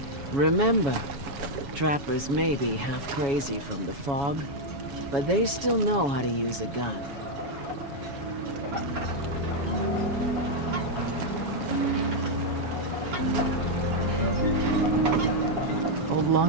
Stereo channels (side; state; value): left; late; 7.2 ms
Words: Remember, trappers may be half crazy from the fog, but they still know how to use a gun. Old